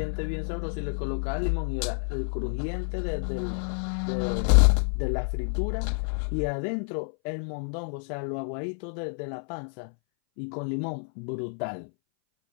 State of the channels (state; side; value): silent; right; 59 dB below the other